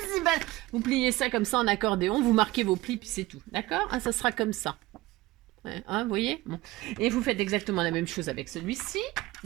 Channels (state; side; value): quieter; left; 18.6 dB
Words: Vous pliez ça comme ça en accordéon, vous marquez vos plis, puis c'est tout. D'accord, hein, ça sera comme ça. Ouais, hein, vous voyez bon. Et vous faites exactement la même chose avec celui-ci.